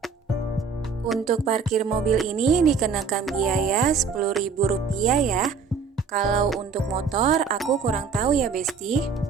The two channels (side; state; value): left; quieter; 5.4 dB